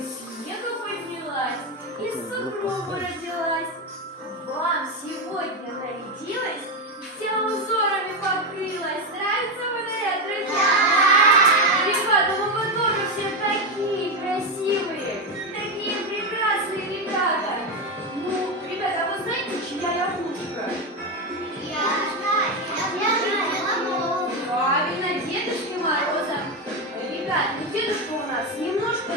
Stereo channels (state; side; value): normal; both; correlation 0.11